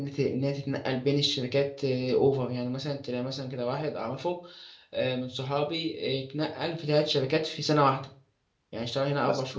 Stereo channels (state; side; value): identical; both; correlation 1.00